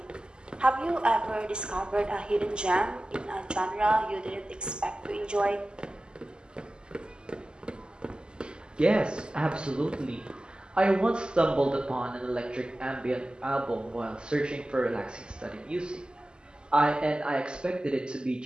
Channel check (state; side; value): late; left; 0.048 ms